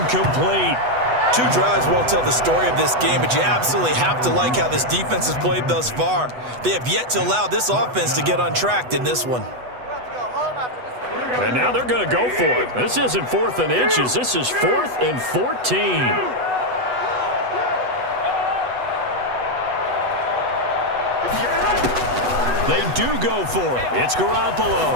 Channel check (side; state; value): left; late; 8.1 ms